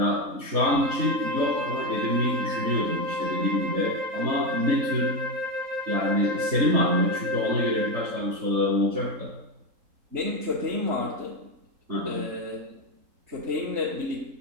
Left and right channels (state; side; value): late; left; 3.8 ms